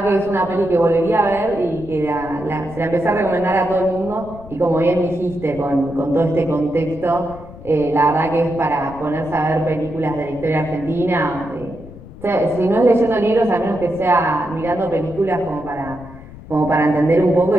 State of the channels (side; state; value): left; noise; rumble, 17 dB below the sound